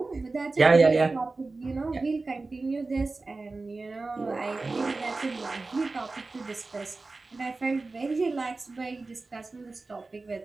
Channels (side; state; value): left; quieter; 3.6 dB